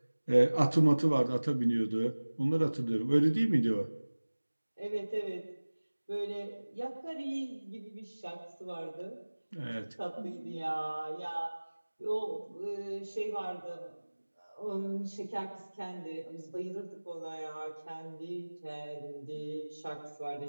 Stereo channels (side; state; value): both; inverted; correlation -1.00